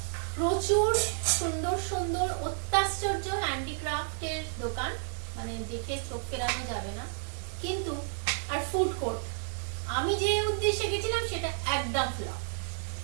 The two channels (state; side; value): silent; left; 57 dB below the other